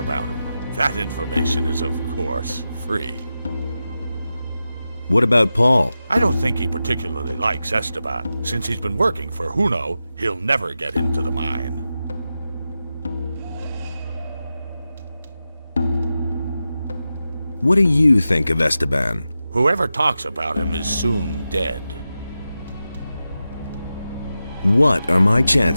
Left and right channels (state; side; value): inverted; both; correlation -0.92